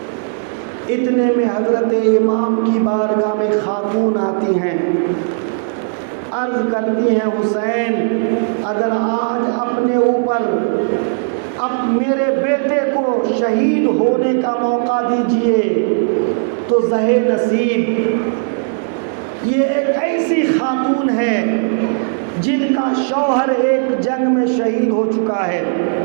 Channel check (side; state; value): left; silent; digital silence